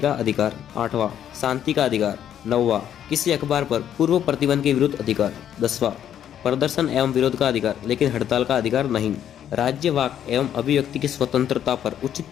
का अधिकार। आठवां, शांति का अधिकार। नौवां, किसी अखबार पर पूर्व प्रतिबंध के विरुद्ध अधिकार। 10वां, प्रदर्शन एवं विरोध का अधिकार, लेकिन हड़ताल का अधिकार नहीं। राज्य वाक एवं अभिव्यक्ति की स्वतंत्रता पर उचित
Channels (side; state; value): right; quieter; 10.1 dB